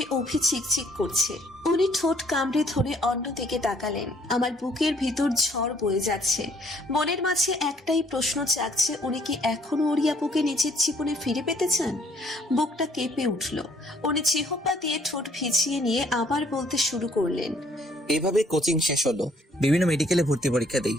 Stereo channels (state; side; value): normal; both; correlation 0.63